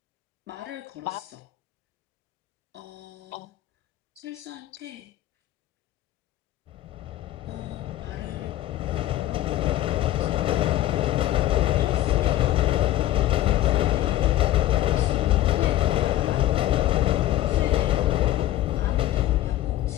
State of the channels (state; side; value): quieter; right; 14.0 dB